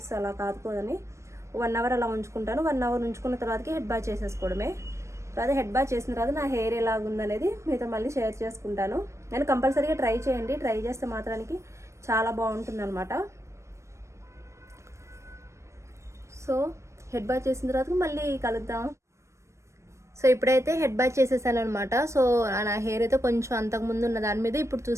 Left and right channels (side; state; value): left; late; 0.14 ms